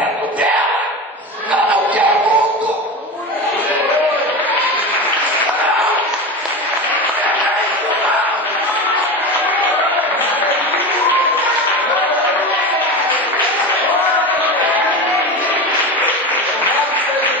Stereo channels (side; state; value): both; normal; correlation 0.25